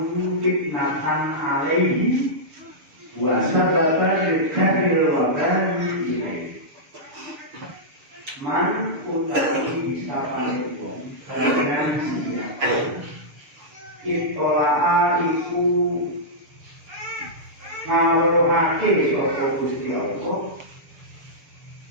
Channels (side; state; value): left; late; 6.9 ms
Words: fitnatan alaihi wa sabata likaril wabani ilaihi. Man utawi sapanipun kalian sira itolaa iku ngawruhake sapa Gusti Allah